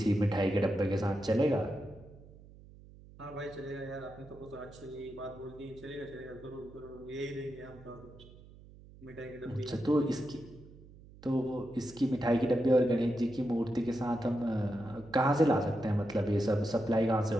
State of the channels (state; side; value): noise; right; hum, 21 dB below the sound